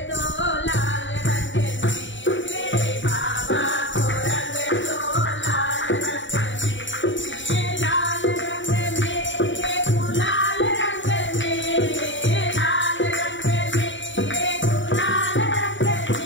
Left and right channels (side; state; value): right; late; 0.55 ms